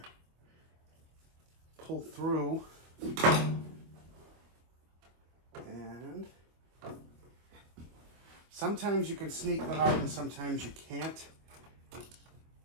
Pull through, and sometimes you can sneak them out and sometimes you can't.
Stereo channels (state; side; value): late; left; 25 ms